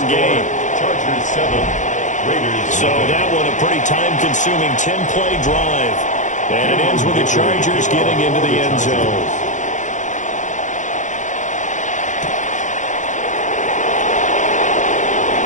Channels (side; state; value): right; late; 0.36 ms